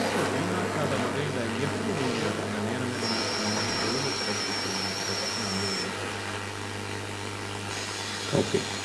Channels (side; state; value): both; identical; correlation 1.00